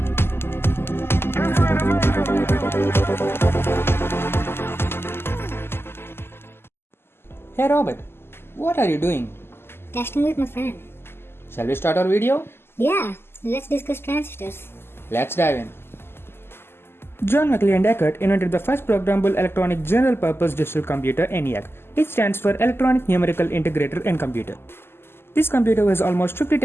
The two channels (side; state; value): right; late; 0.12 ms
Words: Hey Robert, what are you doing? Testing with my friend. Shall we start our video? Yeah, let's discuss transistors. Let's dive in. John Mackley and Eckert invented the first programmable electronic general-purpose digital computer ENIAC. It stands for Electronic Numerical Integrator and Computer. This computer was almost 50